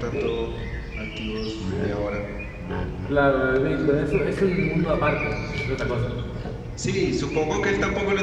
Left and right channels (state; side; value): identical; both; correlation 1.00